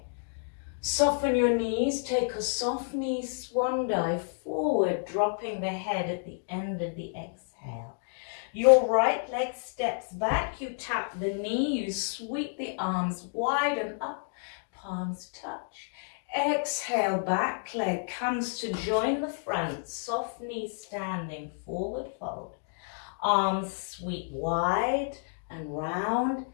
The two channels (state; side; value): silent; right; digital silence